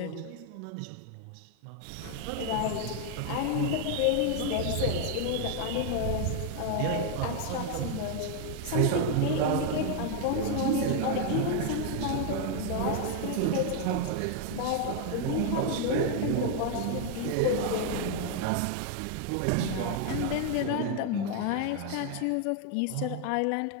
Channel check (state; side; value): different; both; correlation 0.00